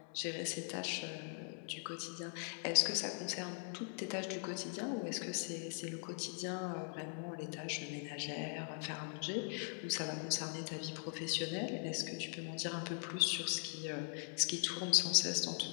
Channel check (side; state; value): right; silent; 50 dB below the other